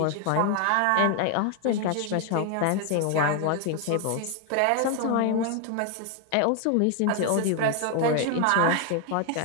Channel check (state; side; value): different; both; correlation 0.01